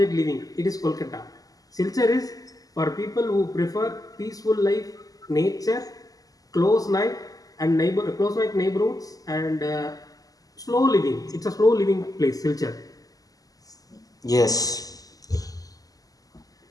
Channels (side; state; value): right; late; 0.17 ms